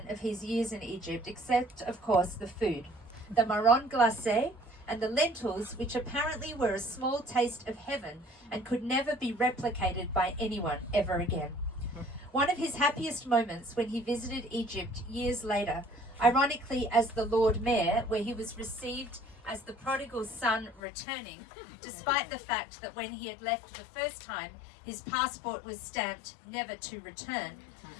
of his years in Egypt, except, of course, the food. The marron glacé and the lentils, which apparently were a small taste of heaven and could never be replicated by anyone ever again. One of his happiest moments when he visited Egypt years later, ironically as the Lord Mayor, where he was received as the prodigal son returning, despite the fact that when he had left the first time, his passport was stamped never to return,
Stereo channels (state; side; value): drops out; right; at 20.8 s